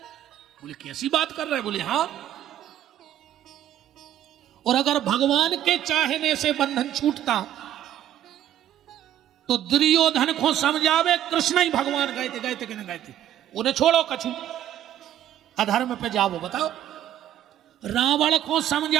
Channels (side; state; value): left; quieter; 11.5 dB